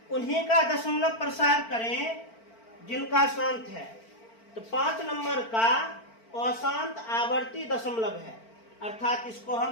उन्हीं का दशमलव प्रसार करें जिनका शांत है। तो 5 नंबर का अशांत आवर्ती दशमलव है, अर्थात इसको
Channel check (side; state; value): right; late; 4.4 ms